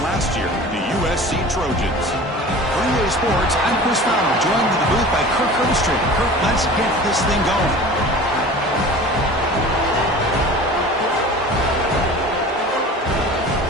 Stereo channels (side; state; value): both; normal; correlation 0.39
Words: last year, the USC Trojans. For EA Sports, I'm Chris Fowler, joined in the booth by Kirk Herbstreit. Kirk, let's get this thing going.